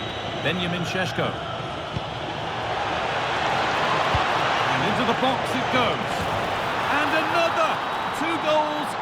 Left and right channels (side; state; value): both; identical; correlation 1.00